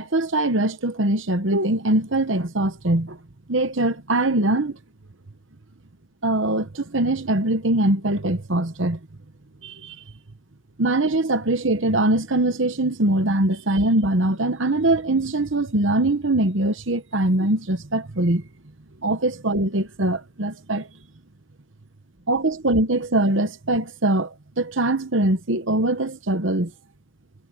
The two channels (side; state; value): both; normal; correlation 0.27